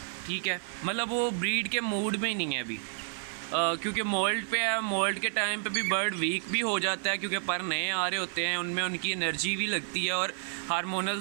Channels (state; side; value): silent; left; digital silence